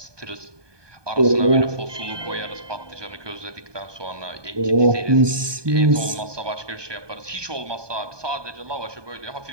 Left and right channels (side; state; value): left; late; 1.2 ms